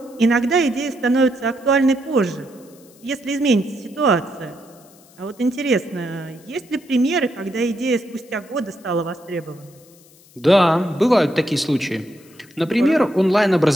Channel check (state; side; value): noise; left; hiss, 27 dB below the sound